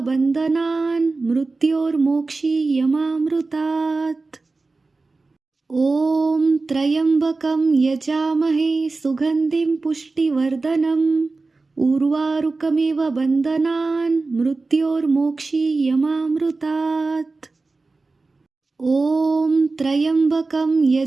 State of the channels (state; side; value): quieter; left; 3.7 dB